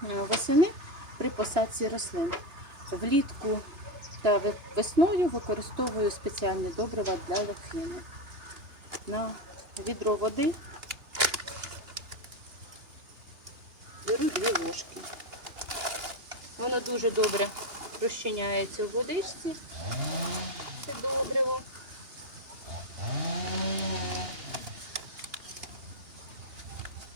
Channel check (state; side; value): late; left; 2.9 ms